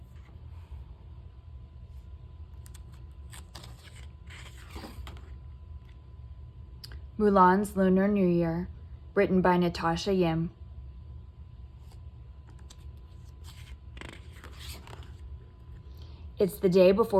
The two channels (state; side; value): identical; both; correlation 1.00